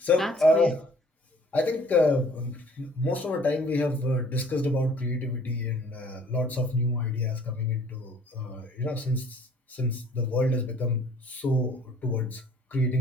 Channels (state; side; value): normal; both; correlation 0.55